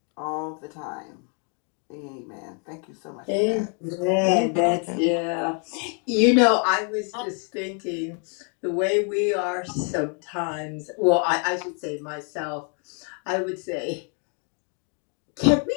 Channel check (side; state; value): right; quieter; 39.0 dB